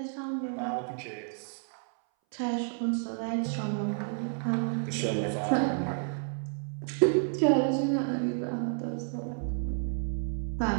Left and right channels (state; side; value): silent; left; 57 dB below the other